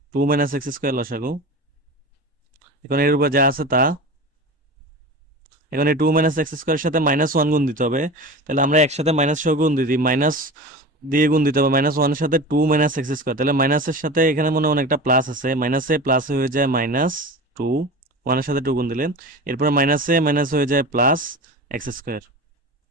2 - x² লসাগু, এখন এর উপর যা আছে তা, এখন এই 2 - x² এর সাথে -1 গুণ দিতে হবে, তাহলে আমরা একসাথে মাইনাস সহ গুণ দিই, মাইনাস দিয়ে গুণ দিতে হবে, -1 এর সাথে 2 - x², তাহলে মাইনাসের সাথে এখানে মনে হয় একটা প্লাস আছে, মাইনাসে প্লাস হয়ে যায় -2, 1 এর সাথে 2 গুণ দিলে, এরপর মাইনাসে মাইনাস হয়ে যায় +x²।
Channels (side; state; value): both; normal; correlation 0.31